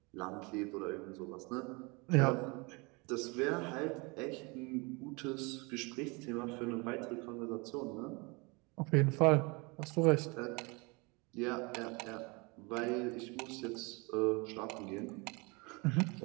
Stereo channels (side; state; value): left; quieter; 28.1 dB